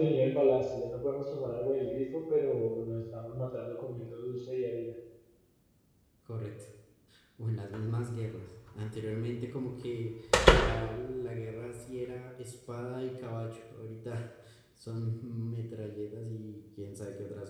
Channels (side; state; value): both; identical; correlation 1.00